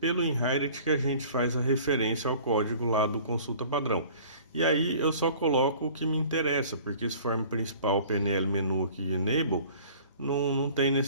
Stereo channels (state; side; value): inverted; both; correlation -0.47